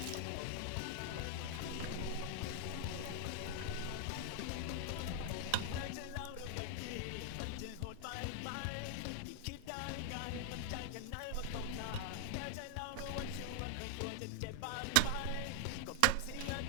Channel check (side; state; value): both; different; correlation 0.00